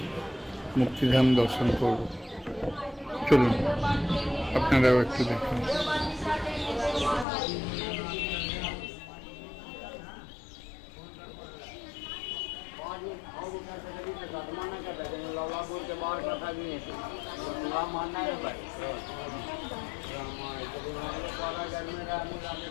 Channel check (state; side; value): drops out; right; at 7.2 s